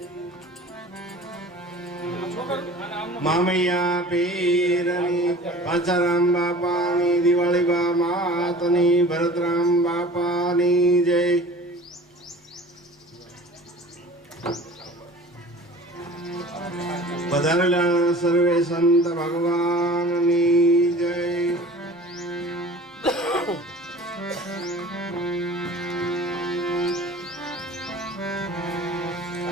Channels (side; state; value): both; normal; correlation 0.43